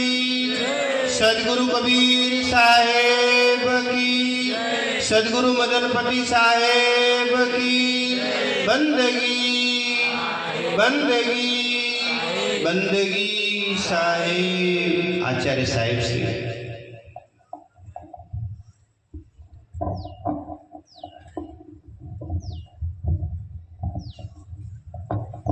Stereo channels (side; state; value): both; identical; correlation 1.00